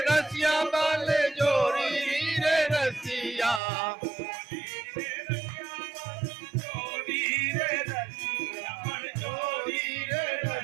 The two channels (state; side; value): drops out; left; at 3.6 s